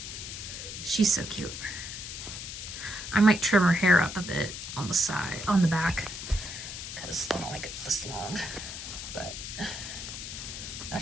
She's so cute. I might trim her hair up a bit on the side, on the back, because I don't like it this long, but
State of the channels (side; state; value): left; noise; hiss, 8 dB below the sound